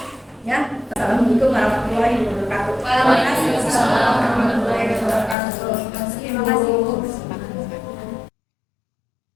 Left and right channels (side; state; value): right; drops out; at 5.4 s